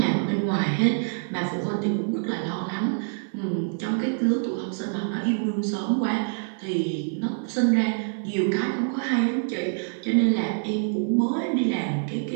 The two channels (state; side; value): silent; left; 56 dB below the other